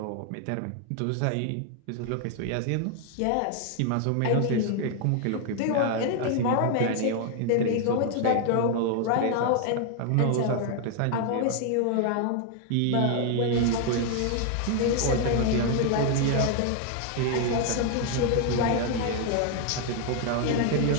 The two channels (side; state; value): both; different; correlation 0.00